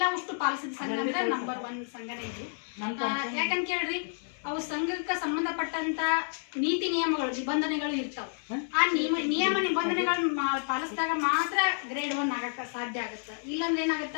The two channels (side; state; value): right; silent; digital silence